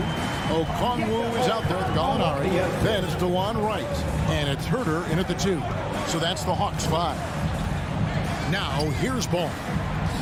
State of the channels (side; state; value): both; identical; correlation 1.00